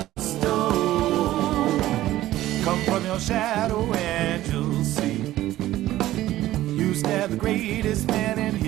stoned. Come from your shadow and you'll see. You stab the greatest man and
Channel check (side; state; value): left; quieter; 14.9 dB